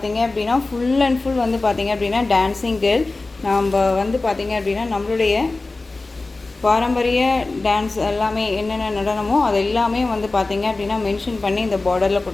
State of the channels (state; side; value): quieter; right; 3.3 dB